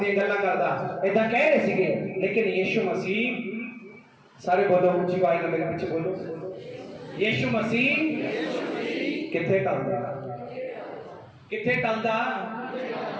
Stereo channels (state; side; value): identical; both; correlation 1.00